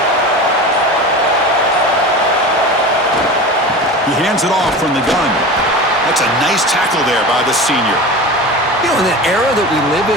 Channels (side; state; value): both; normal; correlation 0.31